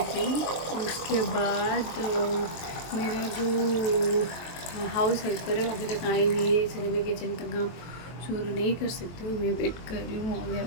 हूँ। उसके बाद मेरा जो हाउस हेल्पर है अभी तक आई नहीं है, इसलिए मैं किचन का काम शुरू नहीं कर सकती हूँ। मैं वेट कर रही हूँ,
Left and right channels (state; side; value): late; right; 23 ms